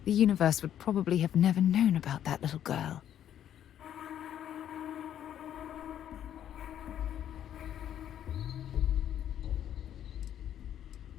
the universe would probably have never known about that little girl.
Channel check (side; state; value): right; quieter; 10.4 dB